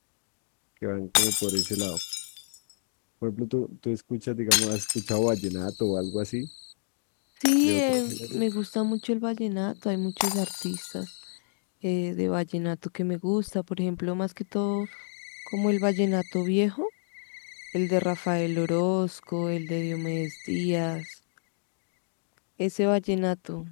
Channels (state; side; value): silent; right; digital silence